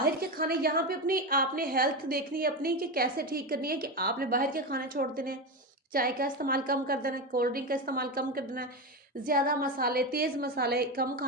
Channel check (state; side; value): normal; both; correlation 0.16